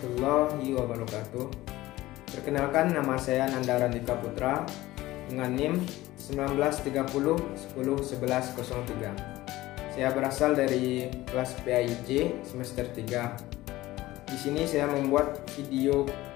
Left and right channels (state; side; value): quieter; right; 17.4 dB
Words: wabarakatuh. Perkenalkan, nama saya Nanda Randika Putra dengan NIM 1930101103. Saya berasal dari kelas PAIJ semester 3. Di sini saya membuat video